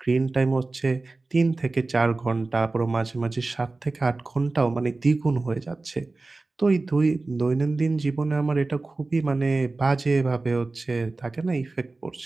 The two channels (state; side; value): quieter; left; 3.4 dB